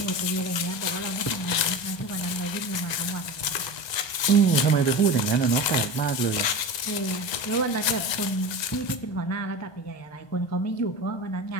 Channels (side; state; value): right; late; 1.2 ms